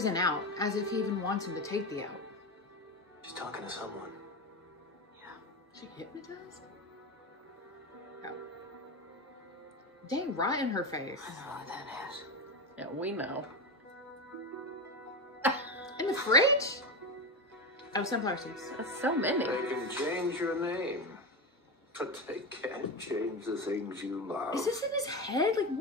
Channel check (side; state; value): both; normal; correlation 0.18